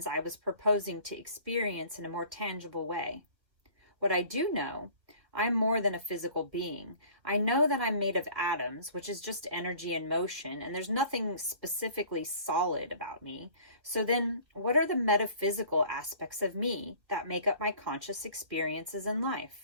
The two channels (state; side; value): late; left; 1.5 ms